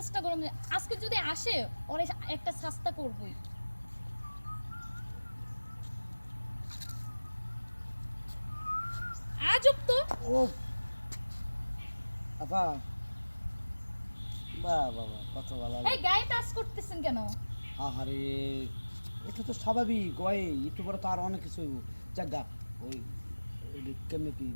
গরম। আজকে যদি আসে ওরে একটা শাস্তা করবই। আজব তো। ও আপা, বাহ বাবা, কত ভালো এই গায়ে টাচ করতেছেন কেন? আহারে, এটা তো স্বাভাবিক। ওই একটু পরে তো আর অনেক কিছু জায়গা ওই কেমনে কি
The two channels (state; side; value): inverted; both; correlation -1.00